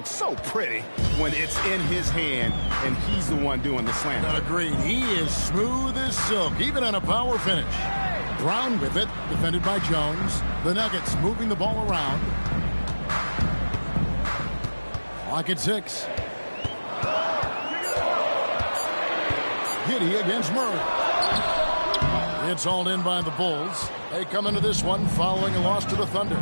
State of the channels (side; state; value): both; inverted; correlation -1.00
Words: so pretty when it's in his hand and he's the one doing the slam. Agreed. He is smooth as silk, even on a power finish. Brown with it, defended by Jones. The Nuggets moving the ball around. Clock at 6. Giddey against Murray. It's all in by the Bulls. They come into this one following a loss to the Thunder.